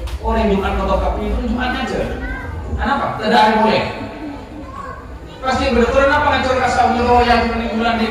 Orang Jumat fotokopi itu Jumat aja. Kenapa? Tidak ada boleh. Pasti betul apa ngacur kasau nyewa yang bulan di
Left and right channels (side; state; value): both; identical; correlation 1.00